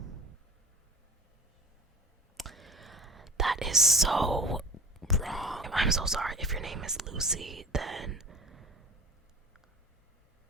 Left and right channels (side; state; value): both; normal; correlation 0.37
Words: is so wrong. I'm so sorry. If your name is Lucy, then